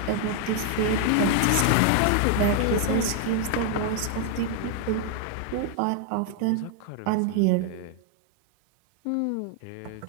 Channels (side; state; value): both; different; correlation 0.00